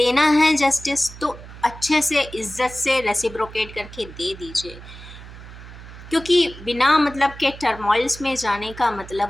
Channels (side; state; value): right; noise; hum, 16 dB below the sound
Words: है जस्टिस तो अच्छे से इज्जत से रेसिप्रोकेट करके दे दीजिए, क्योंकि बिना मतलब के टर्मोइल्स में जाने का